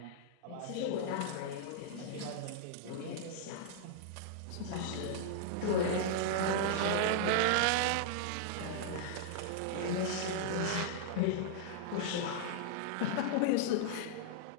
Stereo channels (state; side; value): different; both; correlation -0.01